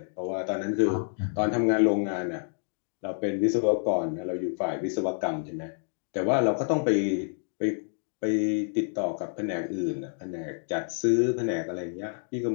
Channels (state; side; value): silent; right; digital silence